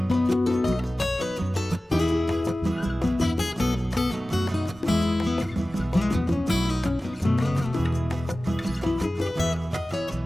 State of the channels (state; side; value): normal; both; correlation 0.96